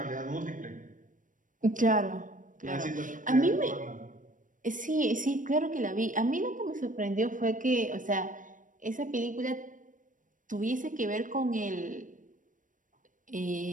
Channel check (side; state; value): left; late; 0.38 ms